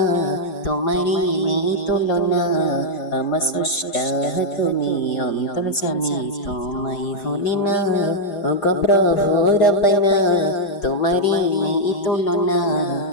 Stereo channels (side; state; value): right; late; 4.9 ms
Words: তোমারি নেই তুলনা আমার স্রষ্টা তুমি অন্তর্যামী তোমায় ভুলি না ওগো প্রভু রব্বানা তোমারি নেই তুলনা